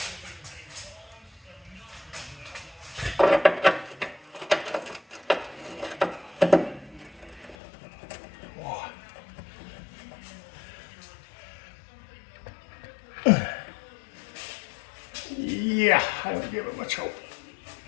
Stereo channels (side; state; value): right; drops out; at 7.6 s